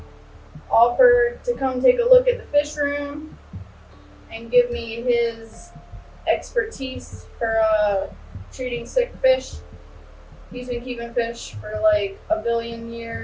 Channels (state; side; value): identical; both; correlation 1.00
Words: offered to come take a look at the fish room and give me his expertise for treating sick fish. He's been keeping fish for like 1 billion